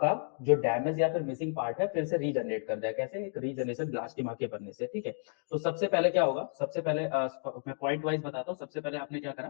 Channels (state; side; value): silent; right; 56 dB below the other